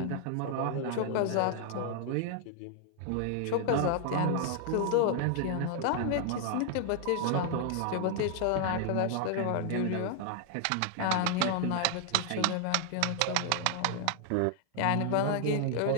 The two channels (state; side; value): different; both; correlation 0.00